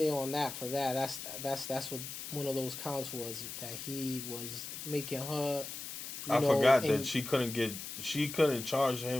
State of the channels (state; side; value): noise; left; hiss, 8 dB below the sound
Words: on that for that. That's what one of those counts was, that he was making her. I forgot that she couldn't charge